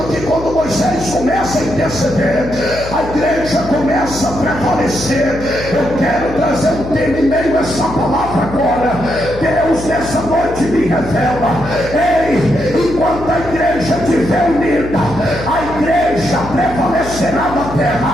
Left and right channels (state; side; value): noise; left; hum, 11 dB below the sound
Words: que quando Moisés começa a interceder, a igreja começa a prevalecer. Eu quero trazer um tema em meio a essa palavra agora. Deus nessa noite me revela: enquanto a igreja estiver unida, a igreja prevalecerá na terra.